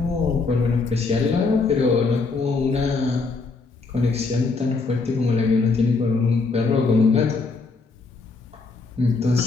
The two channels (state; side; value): quieter; right; 4.0 dB